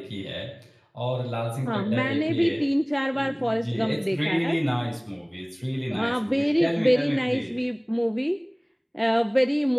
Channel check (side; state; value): both; identical; correlation 1.00